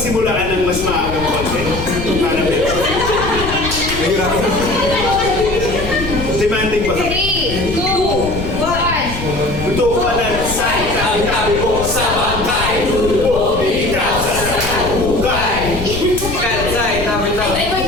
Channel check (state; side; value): noise; left; rumble, 8 dB below the sound